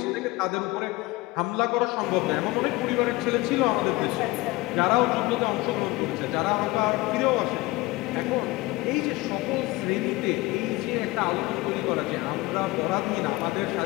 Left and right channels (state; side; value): quieter; right; 20.7 dB